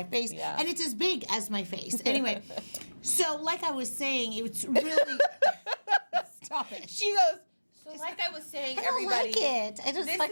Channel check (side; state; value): both; inverted; correlation -1.00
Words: face, and it's as big as my face. Anyway, so like I was saying, it's really... Stop it. She goes, so like I was saying, everybody... I don't like it. I just